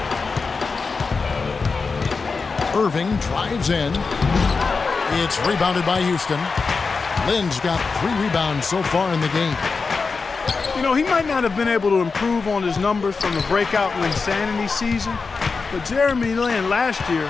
Irving drives in. It's rebounded by Houston. Lynn's got 3 rebounds so far in the game. You know, he might not have been able to improve on his numbers from the breakout Linsanity season, but Jeremy Lin last year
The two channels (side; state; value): right; quieter; 4.6 dB